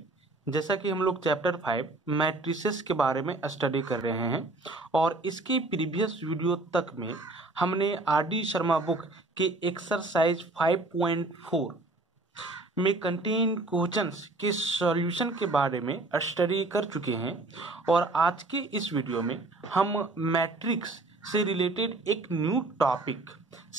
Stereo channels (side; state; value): left; quieter; 3.0 dB